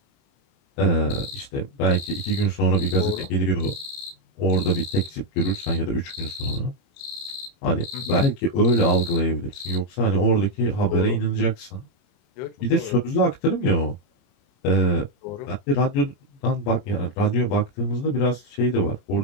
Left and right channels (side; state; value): right; late; 29 ms